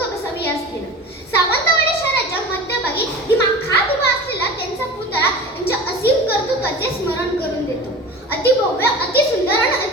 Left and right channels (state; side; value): normal; both; correlation 0.35